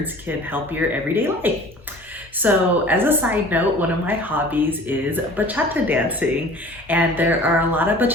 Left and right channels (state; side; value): normal; both; correlation 0.45